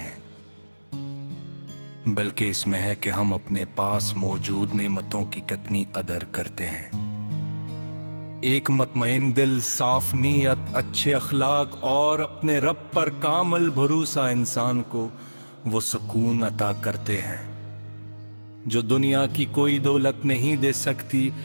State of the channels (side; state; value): both; inverted; correlation -1.00